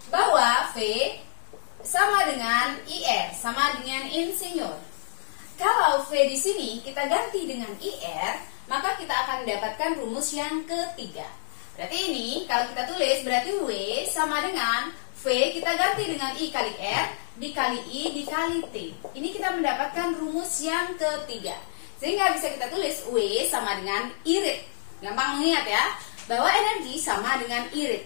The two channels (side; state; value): right; silent; 60 dB below the other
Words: bahwa V sama dengan IR, sama dengan insinyur. Kalau V di sini kita ganti dengan IR, maka kita akan mendapatkan rumus yang ketiga. Berarti ini kalau kita tulis berarti W sama dengan V kita ganti dengan I kali R dikali I dikali T. Ini kita mendapatkan rumus yang ketiga. Sehingga bisa kita tulis W sama dengan irit. Gampang mengingat ya, bahwa energi sama dengan